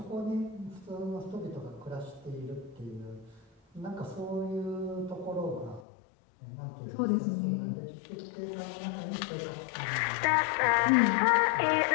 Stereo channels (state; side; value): drops out; right; at 5.9 s